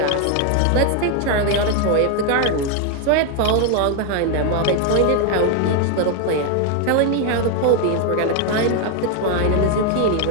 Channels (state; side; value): different; both; correlation 0.01